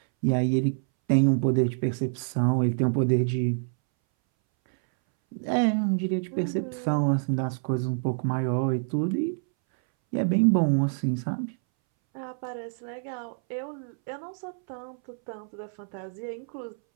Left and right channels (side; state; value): left; silent; 60 dB below the other